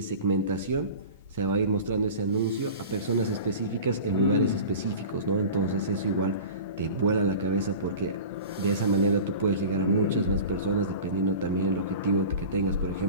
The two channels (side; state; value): both; inverted; correlation -0.36